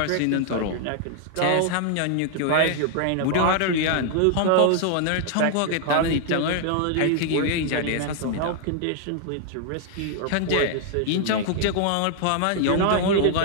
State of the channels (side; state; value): both; different; correlation 0.00